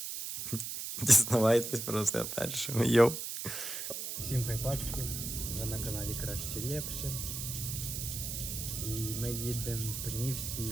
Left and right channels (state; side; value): noise; right; hiss, 5 dB below the sound